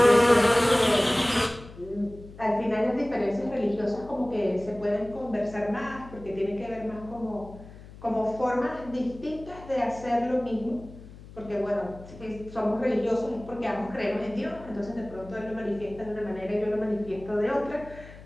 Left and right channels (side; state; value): left; noise; hum, 17 dB below the sound